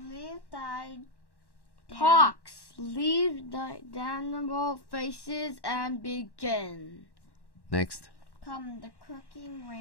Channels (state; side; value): late; right; 1.1 ms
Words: thy Pox, leave thy damnable faces and begin. Next. Come the croaking